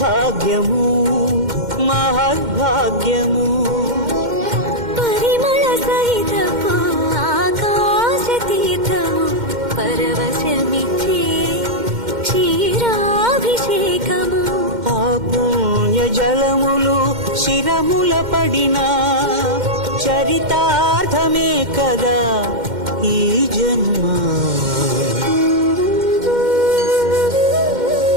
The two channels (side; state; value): left; late; 2.1 ms